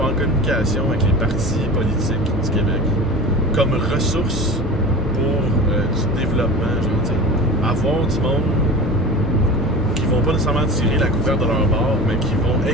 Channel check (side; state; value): both; normal; correlation 0.33